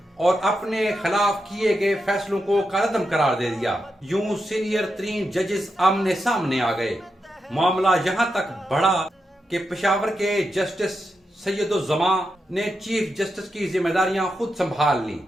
اور اپنے خلاف کیے گئے فیصلوں کو کالعدم قرار دے دیا۔ یوں سینئر ترین ججز آمنے سامنے آ گئے۔ معاملہ یہاں تک بڑھا کہ پشاور کے جسٹس سید الزماں نے چیف جسٹس کی ذمہ داریاں خود سنبھال لی۔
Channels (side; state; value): both; normal; correlation 0.86